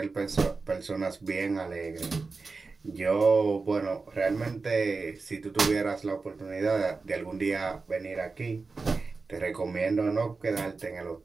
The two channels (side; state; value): left; quieter; 4.1 dB